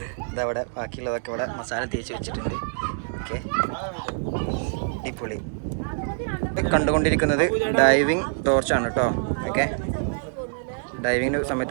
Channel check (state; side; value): silent; left; digital silence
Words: ഇതവിടെ ബാക്കിയുള്ളതൊക്കെ ഇവിടെ മസാല തേച്ച് വെച്ചിട്ടുണ്ട്. ഓക്കെ, അടിപൊളി. കണ്ടുകൊണ്ടിരിക്കുന്നത് ഡൈവിങ് ടോർച്ചാണ് കേട്ടോ. ഓക്കെ, ഡൈവിങ്ങിന്